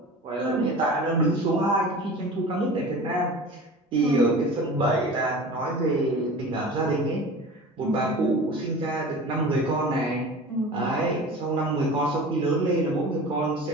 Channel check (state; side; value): normal; both; correlation 0.37